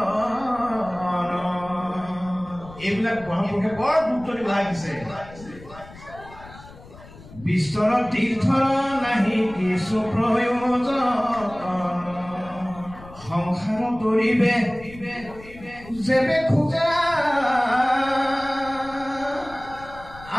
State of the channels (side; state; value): left; noise; rumble, 19 dB below the sound